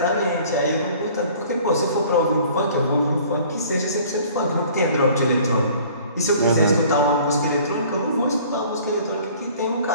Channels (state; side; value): inverted; both; correlation -0.51